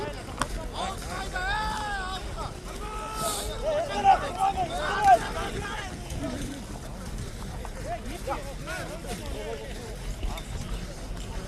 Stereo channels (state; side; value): identical; both; correlation 1.00